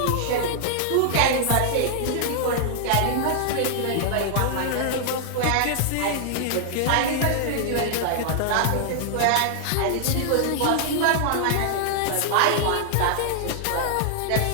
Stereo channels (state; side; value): different; both; correlation -0.01